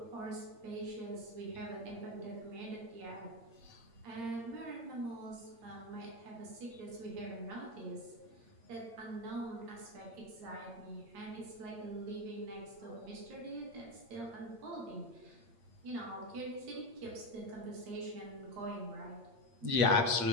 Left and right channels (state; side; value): late; left; 8.7 ms